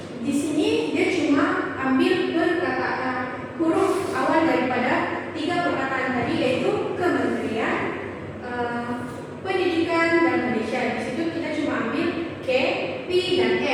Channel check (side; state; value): both; identical; correlation 1.00